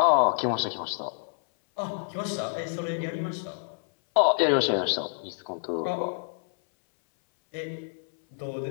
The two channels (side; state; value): right; silent; 59 dB below the other